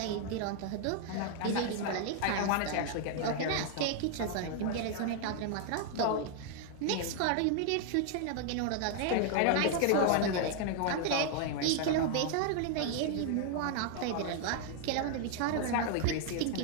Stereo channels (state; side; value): different; both; correlation 0.00